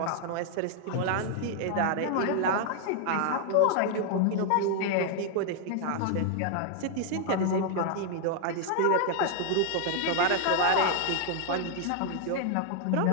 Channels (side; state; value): both; different; correlation 0.00